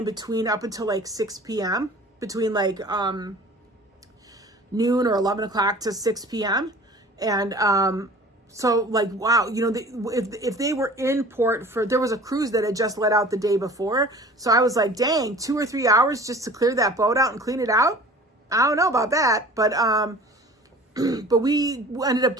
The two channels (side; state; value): both; normal; correlation 0.44